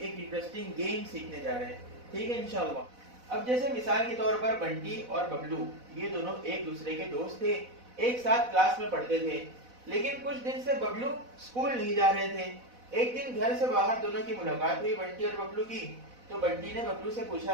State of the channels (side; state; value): left; late; 4.0 ms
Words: एक इंटरेस्टिंग गेम सीखने जा रहे हैं. ठीक है इंशाल्लाह. अब जैसे मिसाल के तौर पर बंटी और बबलू ये दोनों एक दूसरे के दोस्त थे, एक साथ क्लास में पढ़ते थे. लेकिन कुछ दिन से बबलू स्कूल नहीं जा रहे थे. एक दिन घर से बाहर दोनों की मुलाकात हुई बंटी और बबलू की. तो बंटी ने बबलू से पूछा